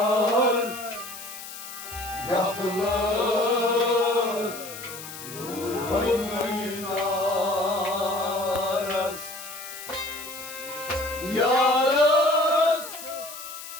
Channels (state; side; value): noise; left; hiss, 12 dB below the sound